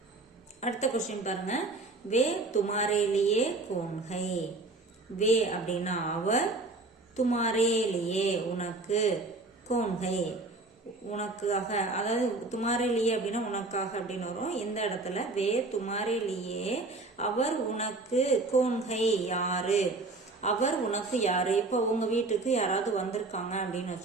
அடுத்த கொஸ்டின் பாருங்க. வே துமாரே லியே கோன் ஹை. வே அப்படின்னா அவர், துமாரே லியே உனக்கு, கோன் ஹை உனக்காக, அதாவது துமாரே லியே அப்படின்னா உனக்காக அப்படின்னு வரும். இந்த இடத்துல வே துமாரே லியே அவர் உனக்கு, கோன் ஹை யாரு, அவர் உனக்கு யாரு. இப்போ உங்க வீட்டுக்கு யாராவது வந்திருக்காங்க அப்படின்னு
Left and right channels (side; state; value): left; quieter; 3.3 dB